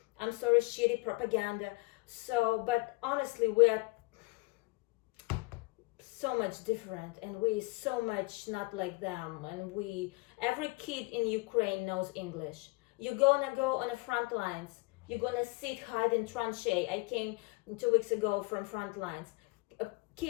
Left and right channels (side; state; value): right; quieter; 25.2 dB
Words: I'm sorry, shitty propaganda. So, but honestly, we are so much different, and we so much not like them. And every kid in Ukraine knows English. You're gonna go on the front lines. You're gonna sit, hide in tranchee. I came 2 weeks ago from front lines.